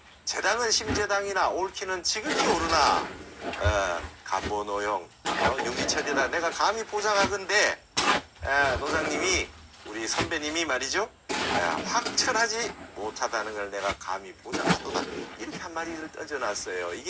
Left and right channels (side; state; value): both; identical; correlation 1.00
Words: 재당은 심재당이나 옳기는 지극히 옳으나 간보노용 윤기철이다 내가 감히 보장하건대 노장님이 우리 선배님이 말이죠 확철하지 못하다는 걸 내가 감히 보장하도다 이렇게 한 마디를 던져놨어요.